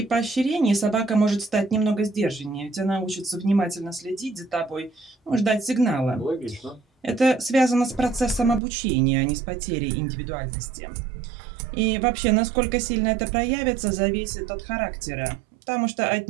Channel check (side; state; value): left; drops out; at 8.6 s